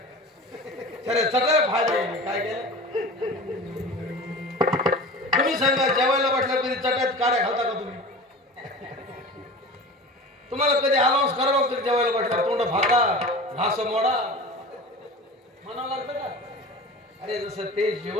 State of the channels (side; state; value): both; normal; correlation 0.36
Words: खरे सगळं फायदा आहे. काय केलं तुम्ही सांगा, जेवायला बसल्या कधी चटात काड्या घालता का तुम्ही? तुम्हाला कधी अनाउन्स करावं लागतं जेवायला बसल्या तोंड फाका घास मोडा म्हणावं लागतं का? अरे जसं ते